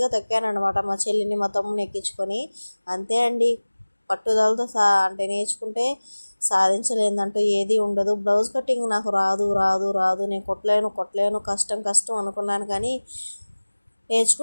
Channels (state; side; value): inverted; both; correlation -1.00